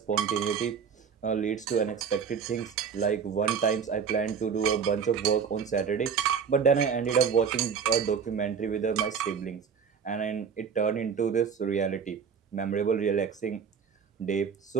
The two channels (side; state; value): left; quieter; 6.6 dB